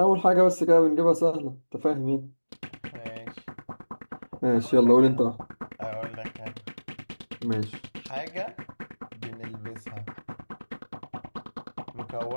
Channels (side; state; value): both; inverted; correlation -1.00